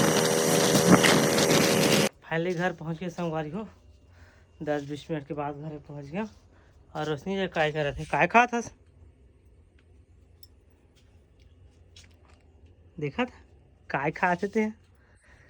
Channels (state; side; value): identical; both; correlation 1.00